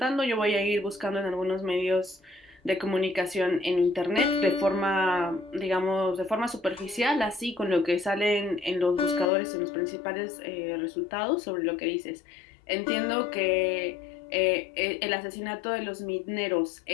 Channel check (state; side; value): drops out; right; at 9.3 s